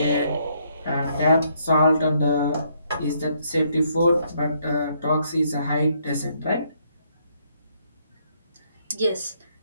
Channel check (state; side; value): inverted; both; correlation -0.71